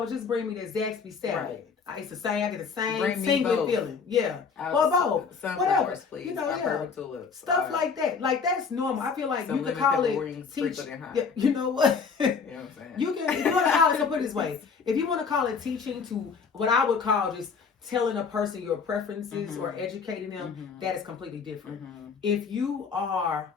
Just bring me the Zaxby salad. I used to say I get the same single feeling. Yeah. Well, both. Whatever. Please. You know, stuff like that. Like that's normal. I feel like you could call it teach. Yeah, you know what? You know what I'm saying? You can if you want to call it, so put it this way. If you want to call it teaching to what I would call just telling a person your preferences or educating them, that is completely different. If you are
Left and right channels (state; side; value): quieter; right; 5.6 dB